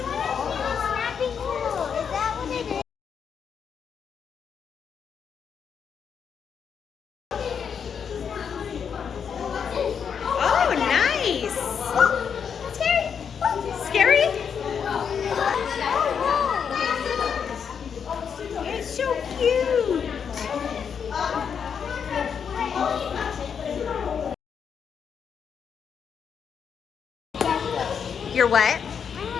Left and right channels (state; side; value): quieter; right; 7.1 dB